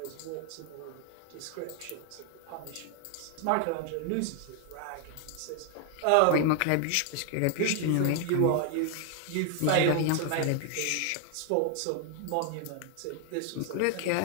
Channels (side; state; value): both; different; correlation 0.01